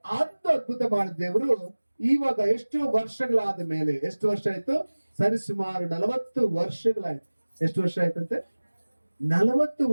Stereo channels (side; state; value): both; inverted; correlation -1.00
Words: ಅದು ಅದ್ಭುತ ಮಾಡಿದ ದೇವರು ಇವಾಗ ಎಷ್ಟು ವರ್ಷಗಳಾದ ಮೇಲೆ, ಎಷ್ಟು ವರ್ಷ ಆಯ್ತು? ಸರಿಸುಮಾರು 40 ವರ್ಷಗಳಾಯ್ತು. ಎಷ್ಟು ವರ್ಷ ಆಯ್ತಂತೆ? 40